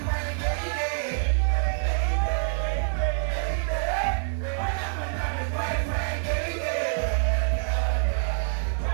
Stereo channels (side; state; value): left; silent; 61 dB below the other